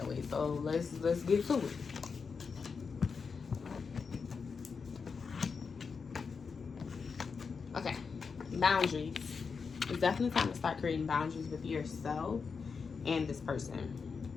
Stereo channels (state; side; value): quieter; right; 5.4 dB